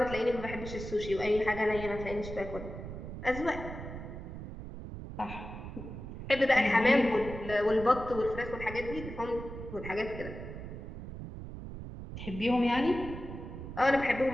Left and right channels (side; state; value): right; noise; rumble, 9 dB below the sound